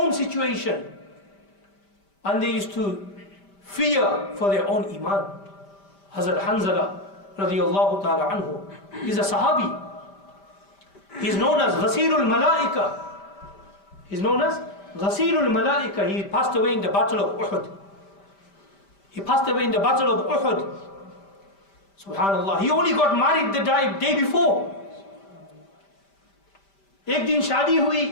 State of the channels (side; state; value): right; late; 5.1 ms